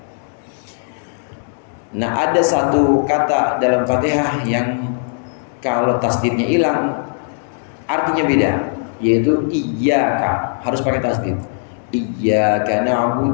Nah ada satu kata dalam Fatihah yang kalau tasdidnya hilang artinya beda, yaitu iyyaka, harus pakai tasdid. Iyyaka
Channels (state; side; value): silent; right; digital silence